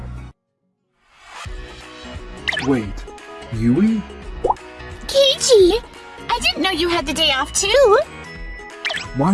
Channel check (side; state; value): both; identical; correlation 1.00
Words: Wait, Yui? Keiichi! I didn't know you had the day off too!